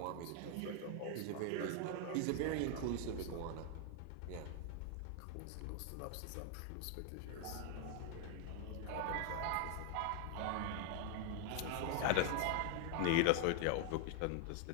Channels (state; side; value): different; both; correlation 0.01